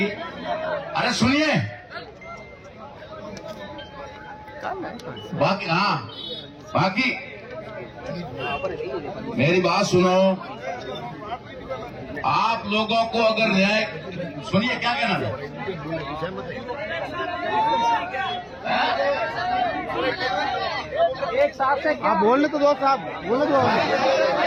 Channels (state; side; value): identical; both; correlation 1.00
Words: अरे सुनिए, बाकी मेरी बात सुनो। आप लोगों को अगर न्याय, सुनिए क्या कहना है? एक साहब से आप बोलने तो दो, साहब बोलने दो।